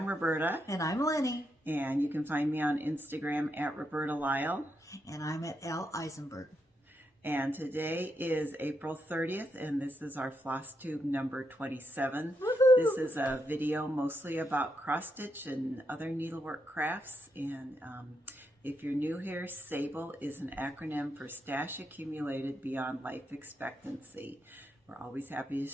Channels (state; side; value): normal; both; correlation 0.82